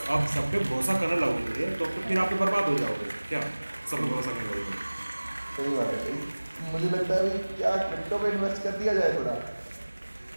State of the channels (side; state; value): both; inverted; correlation -1.00